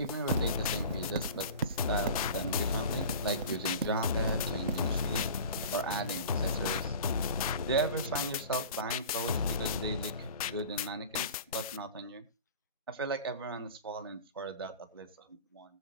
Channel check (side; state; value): both; inverted; correlation -0.37